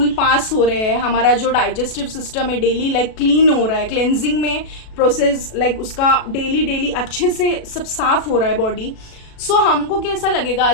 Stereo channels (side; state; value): right; late; 37 ms